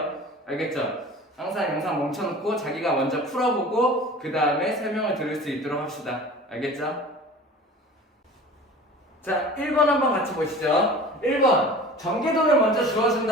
알겠죠? 항상 영상 멈춰놓고 자기가 먼저 풀어보고 그 다음에 설명을 들을 수 있도록 합시다. 알겠죠? 자, 1번 한번 같이 보시죠. 1번 전개도를 먼저 주어준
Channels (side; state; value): both; normal; correlation 0.41